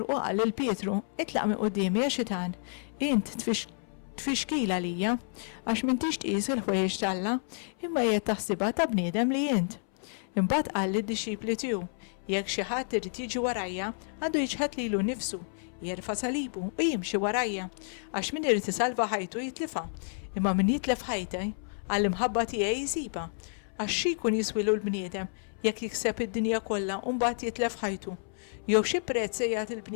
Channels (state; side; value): silent; right; 58 dB below the other